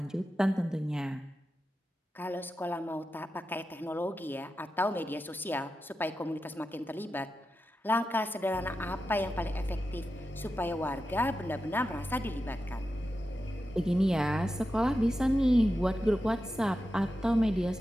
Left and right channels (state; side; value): normal; both; correlation 0.91